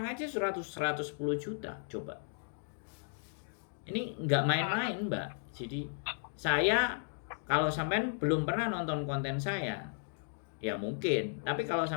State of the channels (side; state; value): right; silent; digital silence